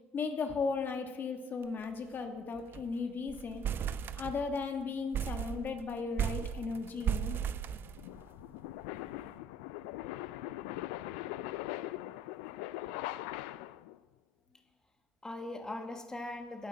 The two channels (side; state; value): both; normal; correlation 0.56